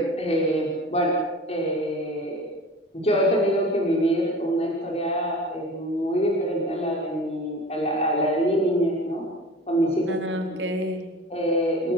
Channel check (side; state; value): both; normal; correlation 0.38